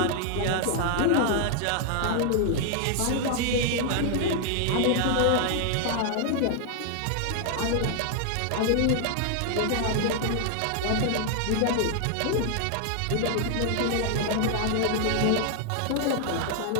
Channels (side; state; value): both; different; correlation 0.00